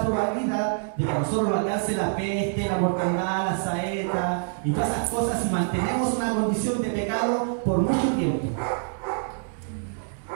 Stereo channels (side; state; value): left; silent; digital silence